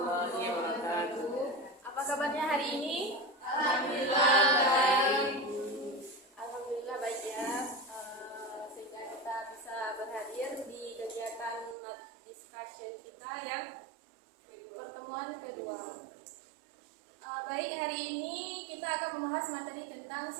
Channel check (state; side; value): drops out; left; at 11.8 s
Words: wabarakatuh. Apa kabarnya hari ini? Alhamdulillah baik. Alhamdulillah baik ya. Sehingga kita bisa berhadir di kegiatan discussion kita yang pertemuan kedua. Baik, hari ini kita akan membahas materi tentang